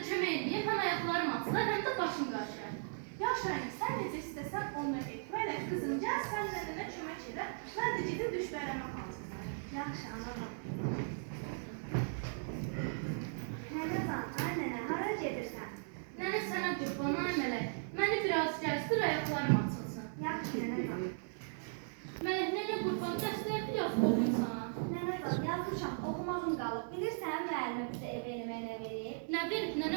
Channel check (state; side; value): silent; left; digital silence